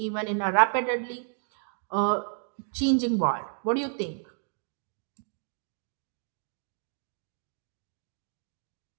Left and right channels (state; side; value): silent; left; 57 dB below the other